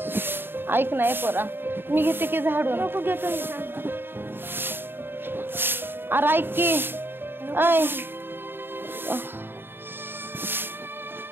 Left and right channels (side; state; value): left; late; 0.10 ms